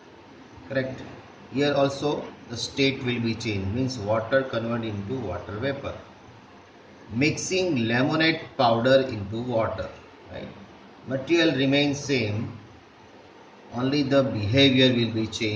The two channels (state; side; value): identical; both; correlation 1.00